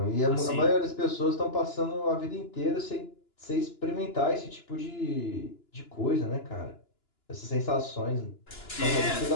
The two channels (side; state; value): right; late; 2.9 ms